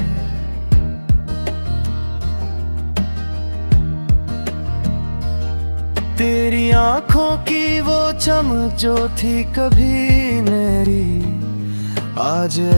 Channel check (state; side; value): inverted; both; correlation -1.00